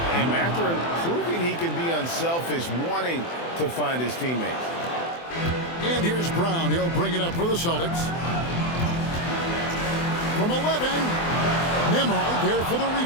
And Mathurin proving he can be unselfish, wanting to find his teammates. And here's Brown. He'll bring it up for the Celtics. From 11, Nembhard there for the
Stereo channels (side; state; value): right; late; 24 ms